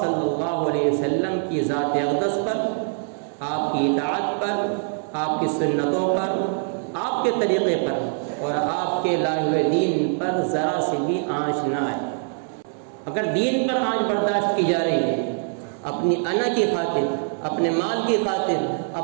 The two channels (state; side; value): silent; left; 63 dB below the other